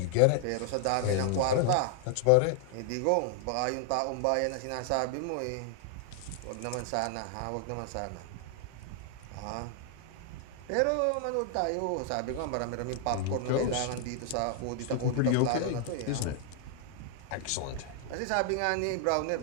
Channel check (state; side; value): different; both; correlation 0.00